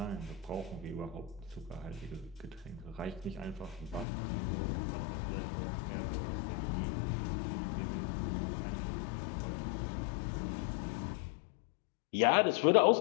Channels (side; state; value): right; drops out; at 4.0 s